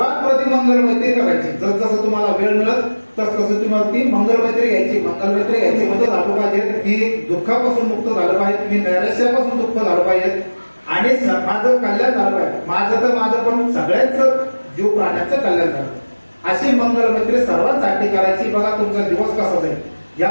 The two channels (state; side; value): inverted; both; correlation -1.00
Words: प्रथम मंगलमैत्री करायची. जसं तुम्हाला वेळ मिळत तसं तुम्हाला ती मंगलमैत्री घ्यायची. मंगलमैत्री घ्यायची म्हणजे झालं पाहिजे मी दुःखापासून मुक्त झालं पाहिजे, मी नैराश्यापासून मुक्त झालं पाहिजे, आणि माझं कल्याण झालं पाहिजे. माझं पण सगळ्याच जीव प्राण्याचं कल्याण झालं. अशी मंगलमैत्री सर्वांसाठी करायची. बघा तुमचा दिवस कसा जाईल. या